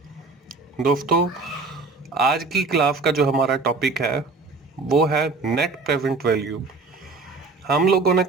दोस्तों, आज की क्लास का जो हमारा टॉपिक है वो है नेट प्रेजेंट वैल्यू। हम लोगों ने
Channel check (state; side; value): quieter; left; 3.9 dB